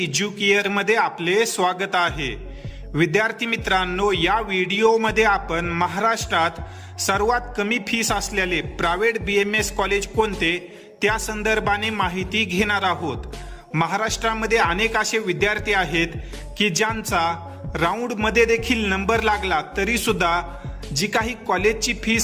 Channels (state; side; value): identical; both; correlation 1.00